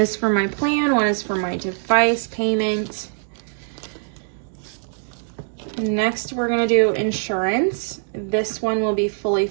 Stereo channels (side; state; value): left; silent; digital silence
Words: for my plan, one is for my device payment. Next, we're gonna do insurance. This one will be fully